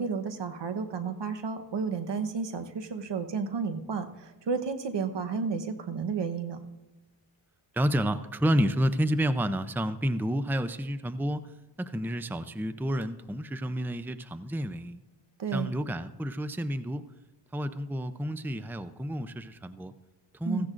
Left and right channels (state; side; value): normal; both; correlation 0.70